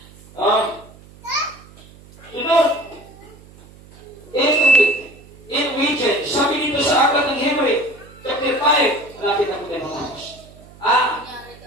Sunod, in region, sabi dito sa aklat ng Hebrew, chapter 5, malapit na po tayo matapos.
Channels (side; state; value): right; noise; hum, 22 dB below the sound